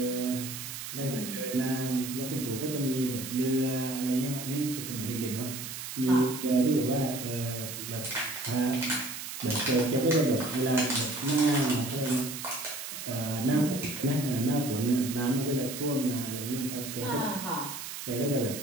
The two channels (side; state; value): right; noise; hiss, 8 dB below the sound